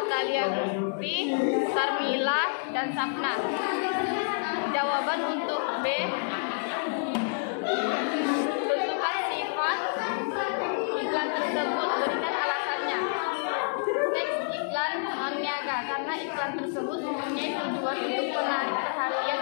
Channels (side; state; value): right; silent; 59 dB below the other